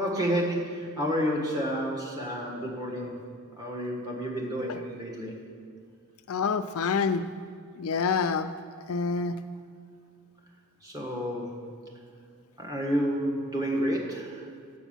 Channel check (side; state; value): both; normal; correlation 0.40